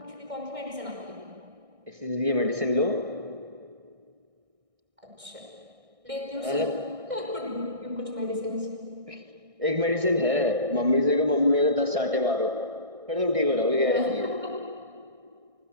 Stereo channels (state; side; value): late; left; 1.6 ms